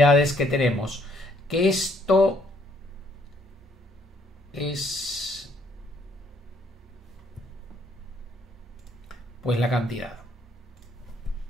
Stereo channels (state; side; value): normal; both; correlation 0.67